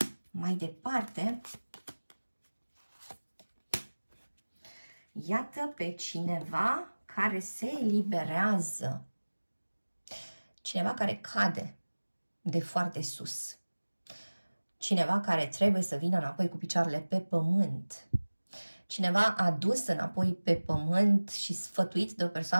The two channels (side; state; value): both; inverted; correlation -1.00